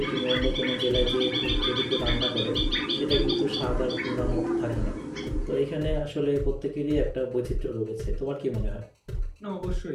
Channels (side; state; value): both; identical; correlation 1.00